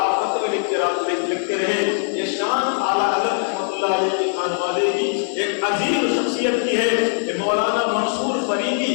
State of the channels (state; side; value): silent; right; 58 dB below the other